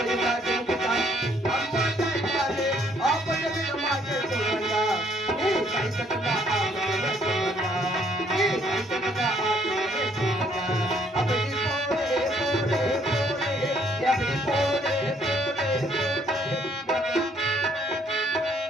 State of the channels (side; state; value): both; normal; correlation 0.66